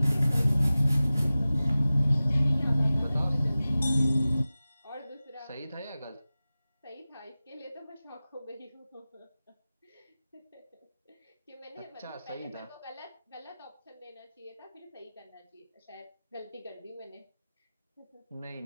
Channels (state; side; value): inverted; both; correlation -0.96